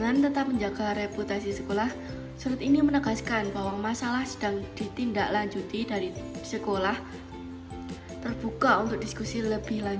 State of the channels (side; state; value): both; identical; correlation 1.00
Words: tetap menjaga reputasi sekolah, surat ini menegaskan bahwa masalah sedang ditindaklanjuti dari sekolah, terbuka untuk diskusi lebih